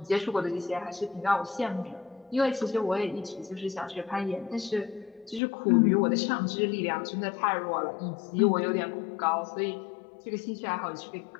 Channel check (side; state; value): right; drops out; at 5.4 s